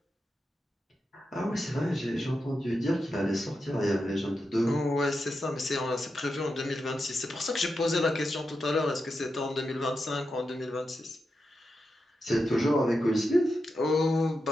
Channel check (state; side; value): normal; both; correlation 0.88